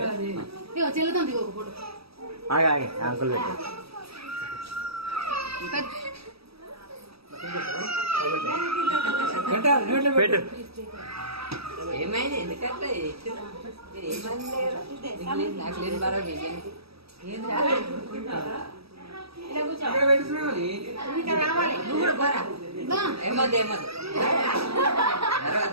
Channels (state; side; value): late; left; 0.77 ms